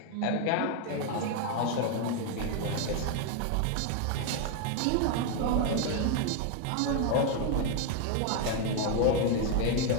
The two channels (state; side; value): different; both; correlation 0.01